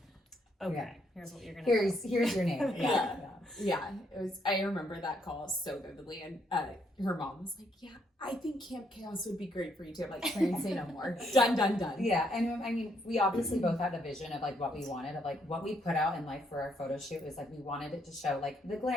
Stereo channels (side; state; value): both; normal; correlation 0.73